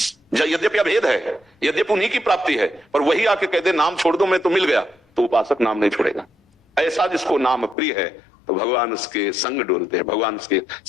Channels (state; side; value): drops out; right; at 7.8 s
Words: यद्यपि अभेद है, यद्यपि उन्हीं की प्राप्ति है, पर वही आके कहते नाम छोड़ दो, मैं तो मिल गया, तो उपासक नाम नहीं छोड़ेगा। ऐसा जिसको नाम प्रिय है तो भगवान उसके संग डोलते हैं, भगवान उसके